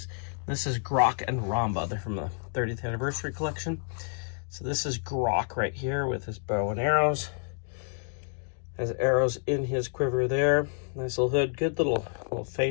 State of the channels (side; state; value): right; silent; 58 dB below the other